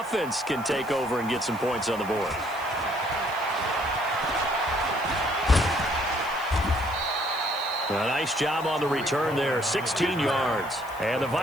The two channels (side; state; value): right; noise; hiss, 21 dB below the sound